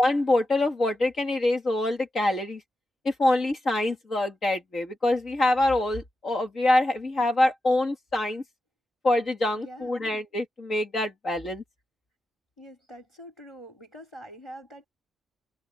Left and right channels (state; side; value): normal; both; correlation 0.90